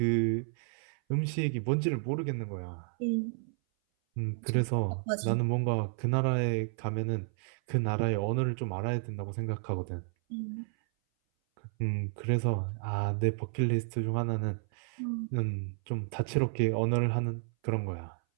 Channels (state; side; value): silent; left; 57 dB below the other